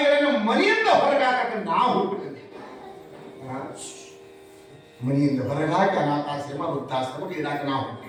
ಮನೆಯಿಂದ ಹೊರಗಾಕ ನಾವು ಹುಟ್ಟಿದ್ದೇವೆ. ಮನೆಯಿಂದ ಹೊರಗಾಕ ಅನಾಥಾಶ್ರಮ, ವೃದ್ಧಾಶ್ರಮ ಇಡಾಕ ನಾವು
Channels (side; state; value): both; identical; correlation 1.00